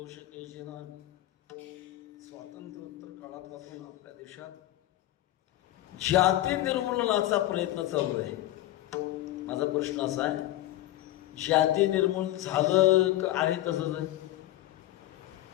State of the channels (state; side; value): quieter; right; 15.3 dB